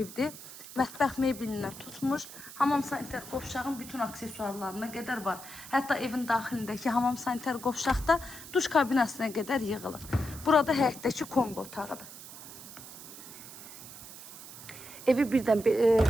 Mətbəx meblindən tutmuş, hamam sanitar qovşağın bütün aksesuarlarına qədər var. Hətta evin daxilindəki hamam sanitar qovşaqda duş kabinasına qədər yığılır. Burada həyətdəki kombi otağıdır. Evi birdən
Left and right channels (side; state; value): right; noise; hiss, 14 dB below the sound